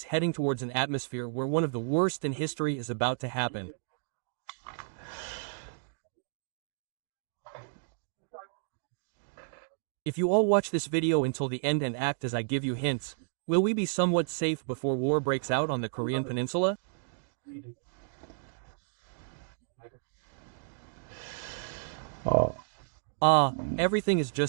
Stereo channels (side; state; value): left; silent; digital silence